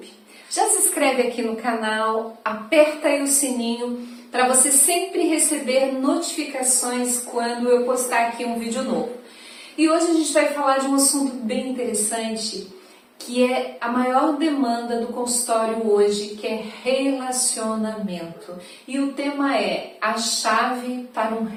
Já se inscreve aqui no canal, aperta aí o sininho para você sempre receber notificações quando eu postar aqui um vídeo novo. E hoje a gente vai falar de um assunto bem interessante, que é a maior demanda do consultório hoje, que é relacionamento. E o tema é a chave para um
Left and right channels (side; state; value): both; identical; correlation 1.00